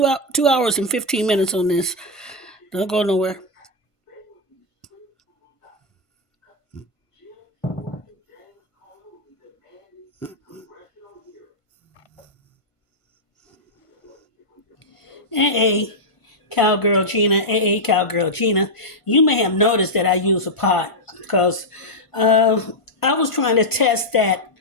hours and 15 minutes on this. Don't go nowhere. Hey, Cowgirl Gina. Hey, Cowgirl Gina. You may have noticed that I use a pot because I was trying to test that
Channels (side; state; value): right; late; 1.5 ms